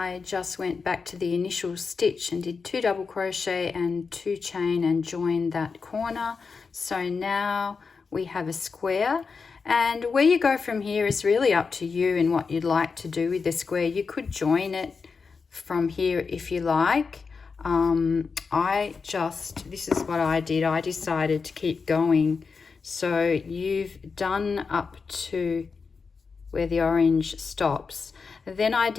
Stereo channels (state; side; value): quieter; right; 5.0 dB